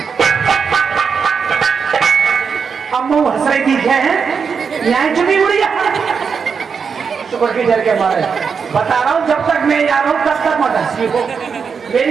अम्मू हंस रही थी, क्या है यहाँ चुनी उड़ी शुक्र के डर के मारे बता रहा हूँ, जब तक मैं जा रहा हूँ तब तक मत हंसी हो।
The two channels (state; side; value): quieter; left; 6.0 dB